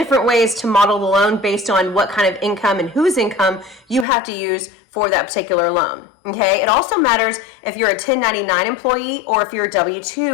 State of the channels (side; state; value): right; drops out; at 4.0 s